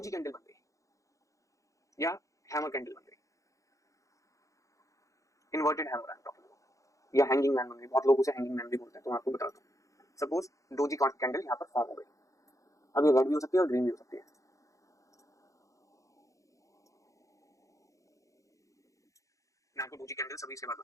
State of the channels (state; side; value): late; right; 0.16 ms